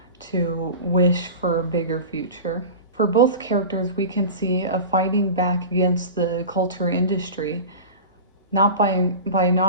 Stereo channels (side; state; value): both; inverted; correlation -0.32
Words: to wish for a bigger future. For both characters, we can see a fighting back against the culture industry, not by